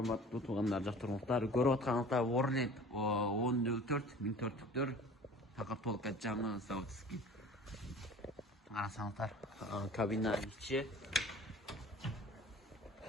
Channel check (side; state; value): both; normal; correlation 0.44